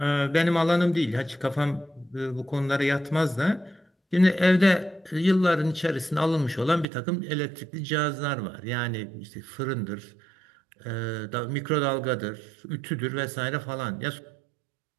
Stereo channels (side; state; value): left; drops out; at 6.9 s